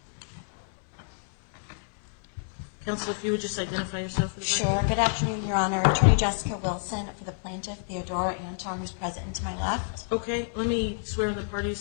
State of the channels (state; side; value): silent; right; 59 dB below the other